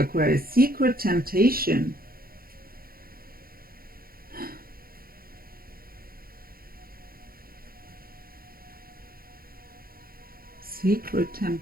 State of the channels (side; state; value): left; late; 0.43 ms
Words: Aquarius? Secret temptation. Secret